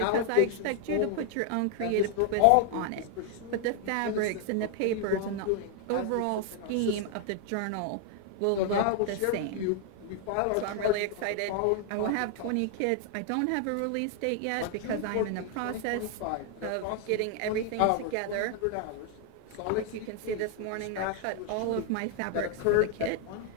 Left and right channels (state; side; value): different; both; correlation 0.00